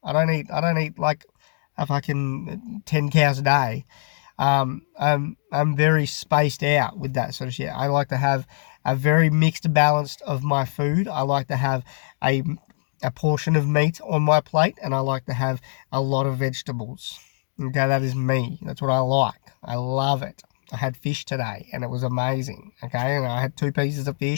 I don't eat like a fucking 10 cows a day. I'm very spaced out with that sort of shit. I like to have a very mixed balance of my food. I like to have a portion of meat on my plate, and I like to have a lot of vegetables. Okay, that is me. That's what I like. I love it. I had fish today, and it was amazing, okay? And I had 2 pieces of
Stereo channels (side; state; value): right; silent; digital silence